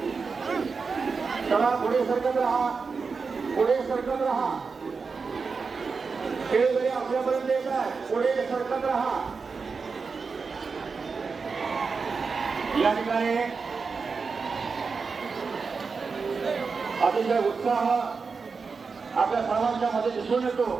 चला पुढे सरकत राहा, पुढे सरकत राहा। खेळगडी आपल्यापर्यंत येत आहे। पुढे सरकत राहा। या ठिकाणी अतिशय उत्साह आपल्या सर्वांच्या मध्ये दिसून येतो।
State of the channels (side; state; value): left; quieter; 4.9 dB